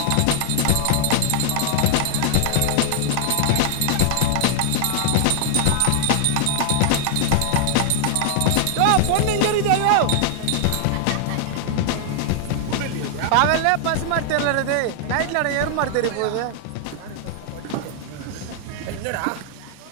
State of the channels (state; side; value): different; both; correlation 0.00